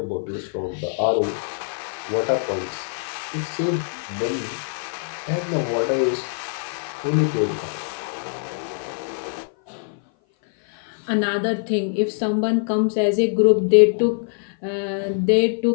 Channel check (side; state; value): right; silent; 57 dB below the other